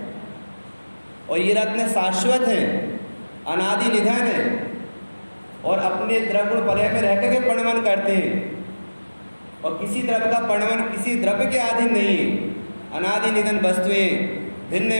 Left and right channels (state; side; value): inverted; both; correlation -1.00